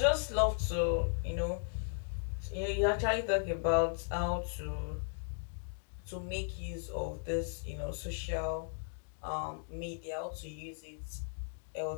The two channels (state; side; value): silent; right; digital silence